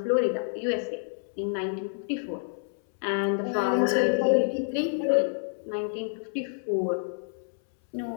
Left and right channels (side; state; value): right; silent; 59 dB below the other